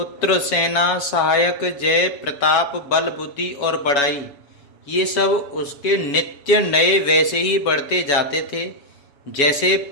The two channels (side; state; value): right; late; 7.1 ms